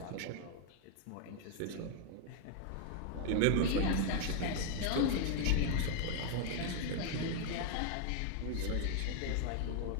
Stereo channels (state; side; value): different; both; correlation 0.00